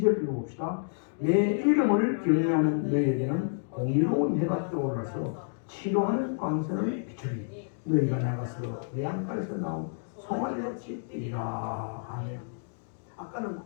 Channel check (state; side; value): silent; right; digital silence